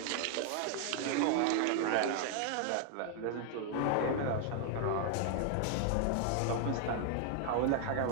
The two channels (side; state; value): both; different; correlation 0.00